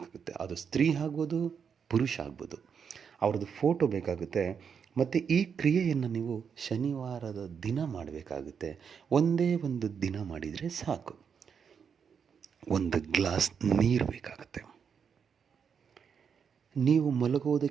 ಅದು ಸ್ತ್ರೀ ಆಗ್ಬೋದು, ಪುರುಷ ಆಗ್ಬೋದು, ಅವ್ರದ್ದು ಫೋಟೋ ಬೇಕಾಗುತ್ತೆ. ಮತ್ತು ಈ ಕ್ರಿಯೆಯನ್ನು ನೀವು ಶನಿವಾರದ ದಿನ ಮಾಡಬೇಕಾಗುತ್ತೆ. ಒಂದೇ ಒಂದು ದಿನ ಮಾಡಿದರೆ ಸಾಕು. ಒಂದು ಗ್ಲಾಸ್ ನೀರು ಬೇಕಾಗುತ್ತೆ. ನೀವು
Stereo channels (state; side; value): quieter; left; 6.8 dB